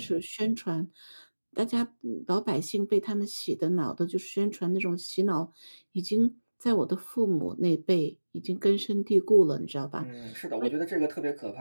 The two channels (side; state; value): both; inverted; correlation -1.00